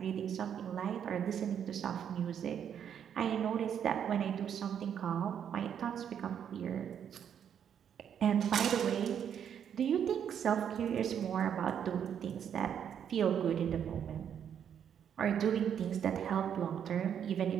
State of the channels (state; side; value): quieter; left; 8.6 dB